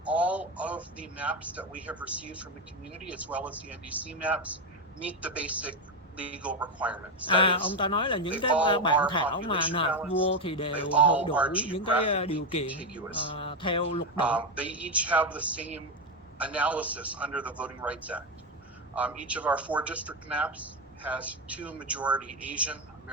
all of the maps that we have received from the community as well as the NDC maps meet the basic legal requirements. Ông ta nói là những cái bản thảo mà nộp vô thì đều hội đủ những cái điều kiện theo luật định. They each have the same analysis under the Voting Rights Act. Each of our 4 district maps has 2 majority Asian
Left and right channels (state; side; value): normal; both; correlation 0.10